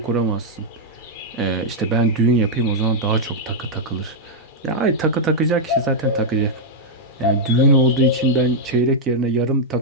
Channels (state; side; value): normal; both; correlation -0.05